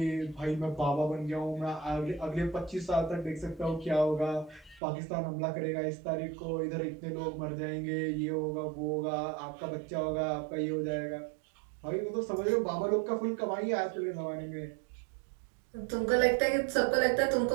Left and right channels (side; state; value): left; drops out; at 4.8 s